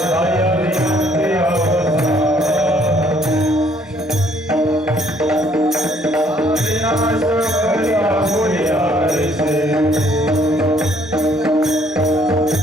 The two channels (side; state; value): both; normal; correlation 0.64